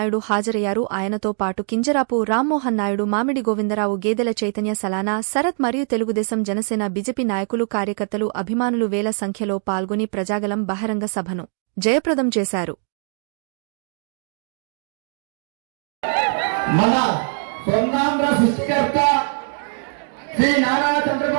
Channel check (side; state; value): left; silent; 64 dB below the other